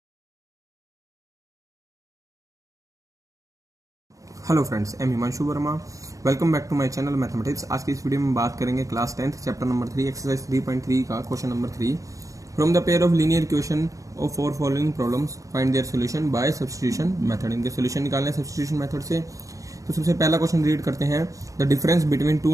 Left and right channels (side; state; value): left; late; 0.16 ms